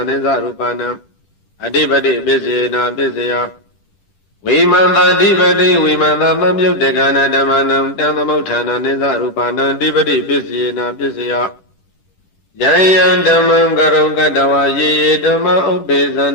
နိသရူပနာအဓိပတိပိစေနပစ္စယောဝိမန္တအဓိပတိဝိမန္တသံယုတ်တကနဓမ္မနံတံသမုဋ္ဌာနနိသရူပနာအဓိပတိပိစေနပစ္စယောယံယံဓမ္မံကရုံကတဝါယေယေဓမ္မဥပ္ပေသန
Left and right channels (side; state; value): right; late; 11 ms